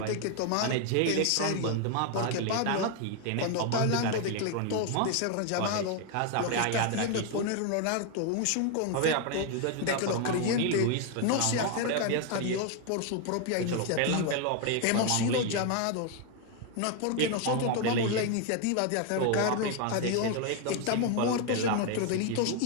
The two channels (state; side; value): different; both; correlation 0.01